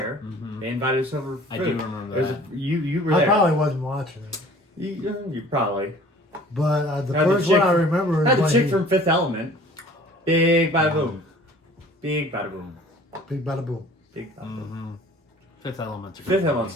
Mhm. They invited us over. For I food. do remember There's that. you were I there. probably wasn't watching it. You probably. But the Had the first one chick- I remember is Had the when chick he, from Fifth Element. Big by boom. Big bada boom. Big bada boom. Big bada boom. Mm-hmm. Fifth Element's a good Fifth movie.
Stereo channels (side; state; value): both; normal; correlation 0.49